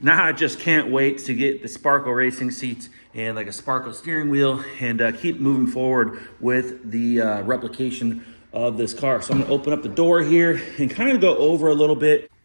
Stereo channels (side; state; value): both; inverted; correlation -1.00